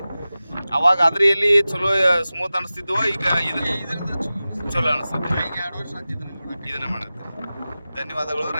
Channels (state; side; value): inverted; both; correlation -0.96